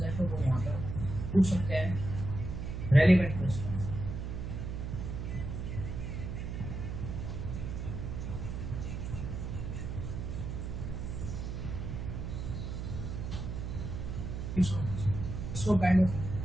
है तो वो यहाँ पर पूछ सकते हैं, relevant question. So kind of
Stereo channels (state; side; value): noise; right; hum, 5 dB below the sound